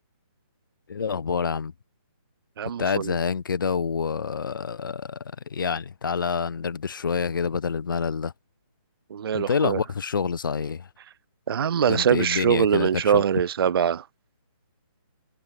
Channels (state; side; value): inverted; both; correlation -0.44